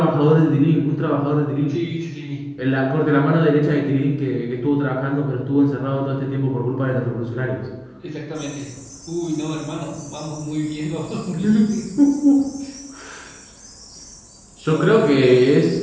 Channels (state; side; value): identical; both; correlation 1.00